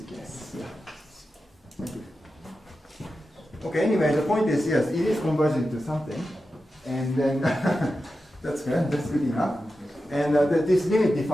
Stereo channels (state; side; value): normal; both; correlation 0.91